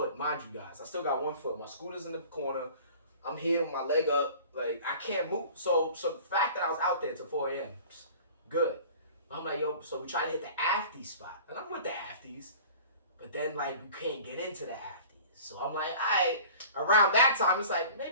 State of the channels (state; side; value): inverted; both; correlation -0.43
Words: mind you guys. I still got 1 foot. My scooter's in the corner. I'm here with my leg up. Like, I can't move. So the fact that I was out there till 4 a.m., good. I'm like, yo, so we try to hit the afties spot. And I'm with the afties. But then, like, we can't get into the afties. So I'm like, all right. Around that time, it's like,